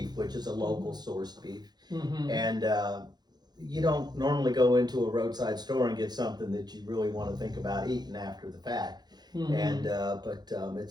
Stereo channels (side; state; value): left; late; 0.20 ms